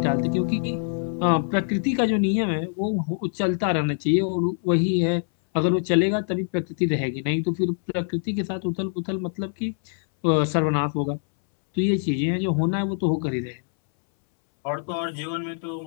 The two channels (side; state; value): right; silent; 62 dB below the other